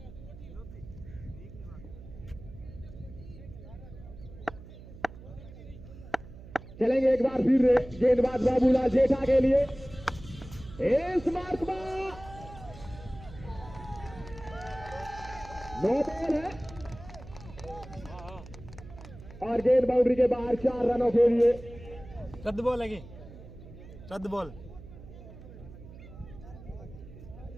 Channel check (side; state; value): right; noise; hum, 16 dB below the sound